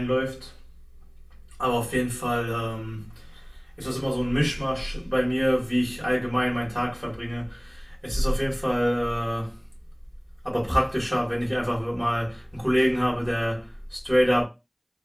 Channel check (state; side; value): identical; both; correlation 1.00